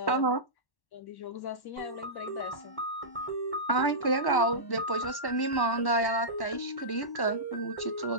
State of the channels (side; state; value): right; late; 1.1 ms